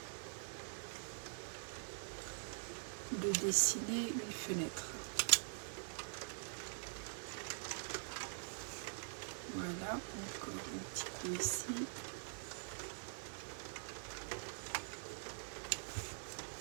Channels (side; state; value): left; silent; digital silence